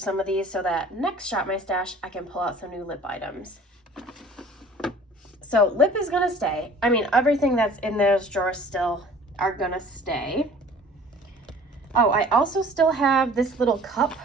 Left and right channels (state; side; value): normal; both; correlation 0.49